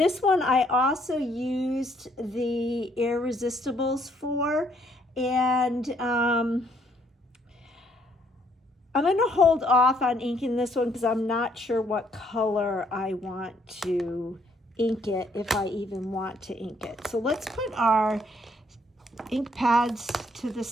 one I also used the Irresistibles for, and I'm going to hold off on inking this one because I'm not sure what color I want to ink it, if I even want to ink it. So let's put our ink pads to the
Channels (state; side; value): normal; both; correlation 0.68